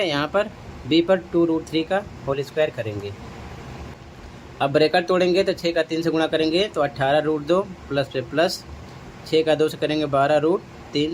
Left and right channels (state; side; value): identical; both; correlation 1.00